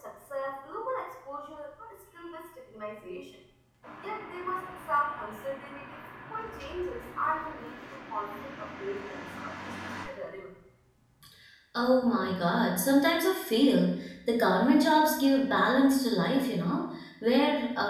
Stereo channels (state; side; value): identical; both; correlation 1.00